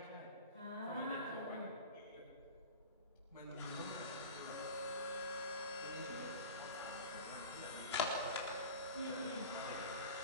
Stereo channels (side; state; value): both; inverted; correlation -0.32